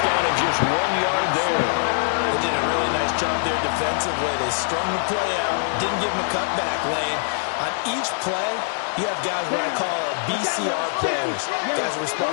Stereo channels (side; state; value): right; silent; digital silence